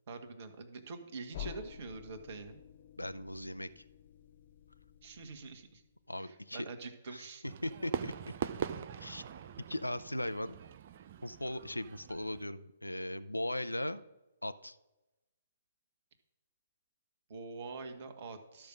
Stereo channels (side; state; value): both; inverted; correlation -0.82